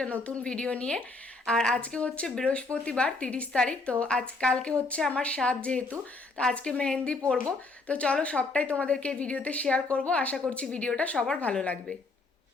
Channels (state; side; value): quieter; right; 3.5 dB